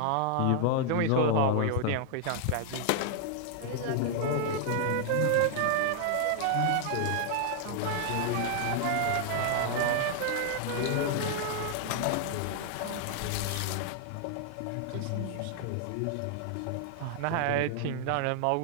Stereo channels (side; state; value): both; different; correlation 0.00